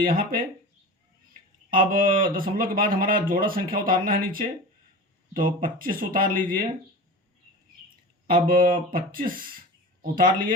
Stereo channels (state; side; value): normal; both; correlation 0.32